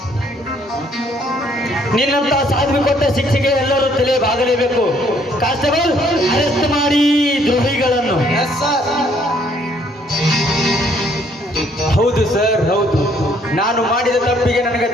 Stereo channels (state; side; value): normal; both; correlation 0.65